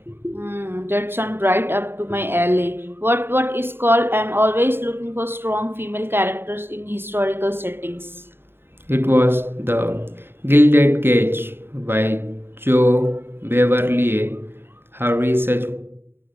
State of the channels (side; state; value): left; late; 0.11 ms